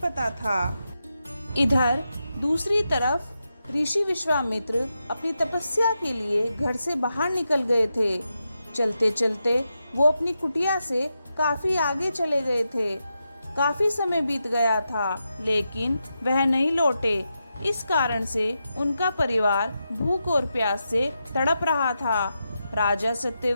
था। इधर दूसरी तरफ ऋषि विश्वामित्र अपनी तपस्या के लिए घर से बाहर निकल गए थे। चलते चलते वो अपनी कुटिया से काफी आगे चले गए थे। काफी समय बीत गया था, लेकिन वह नहीं लौटे। इस कारण से उनका परिवार भूख और प्यास से तड़प रहा था। राजा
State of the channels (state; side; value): inverted; both; correlation -0.87